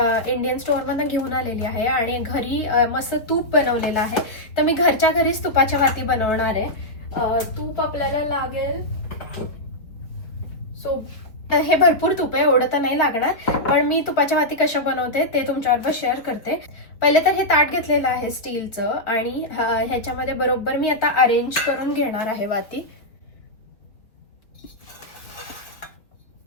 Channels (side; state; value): right; late; 4.3 ms